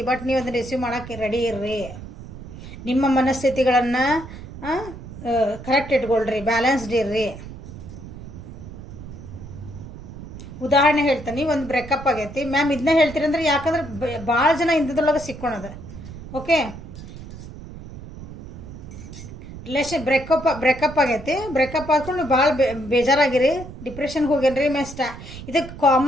ಬಟ್ ನೀವು ಅದನ್ನು ರಿಸೀವ್ ಮಾಡೋಕ್ಕೆ ರೆಡಿ ಇರ್ರಿ. ನಿಮ್ಮ ಮನಸ್ಥಿತಿಗಳನ್ನು ಕರೆಕ್ಟ್ ಇಟ್ಕೊಳ್ರಿ, ಬ್ಯಾಲೆನ್ಸ್ಡ್ ಇರ್ರಿ. ಉದಾಹರಣೆ ಹೇಳ್ತಾನೆ, ಒಂದು ಬ್ರೇಕಪ್ ಆಗೈತಿ ಮ್ಯಾಮ್, ಇದನ್ನ ಹೇಳ್ತೀರಂದ್ರೆ ಯಾಕಂದ್ರೆ ಭಾಳ ಜನ ಇಂಥದ್ರೊಳಗೆ ಸಿಕ್ಕೊಳದ. ಓಕೆ, ಬ್ರೇಕಪ್ ಆಗೈತಿ, ಬ್ರೇಕಪ್ ಆದ್ಕೊಂಡು ಭಾಳ ಬೇಜಾರಾಗಿರಿ, ಡಿಪ್ರೆಷನ್ಗೆ ಹೋಗ್ಯಾನ್ರಿ. ಇದಕ್ಕೆ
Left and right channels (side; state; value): right; noise; rumble, 13 dB below the sound